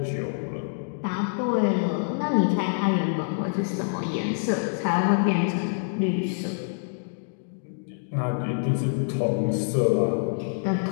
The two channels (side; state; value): right; silent; digital silence